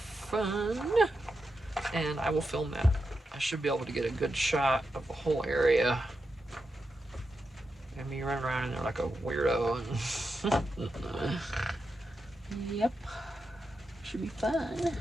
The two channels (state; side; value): normal; both; correlation 0.87